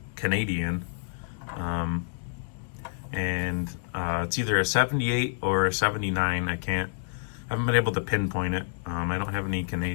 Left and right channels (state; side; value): silent; right; digital silence